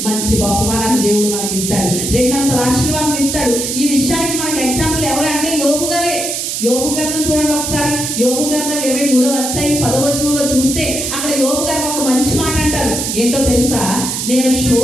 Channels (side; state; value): right; noise; hiss, 2 dB below the sound